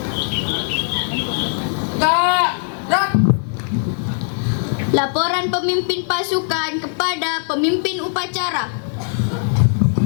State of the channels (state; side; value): silent; right; digital silence